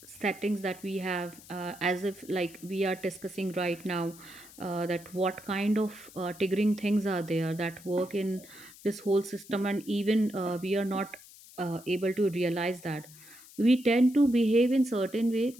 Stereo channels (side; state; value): left; noise; hiss, 20 dB below the sound